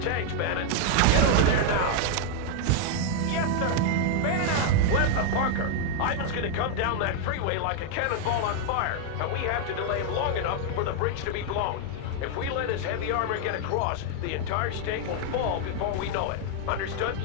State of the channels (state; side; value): different; both; correlation 0.00